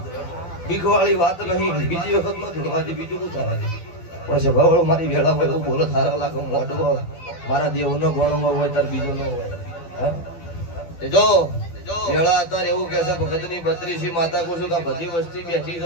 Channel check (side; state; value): right; late; 12 ms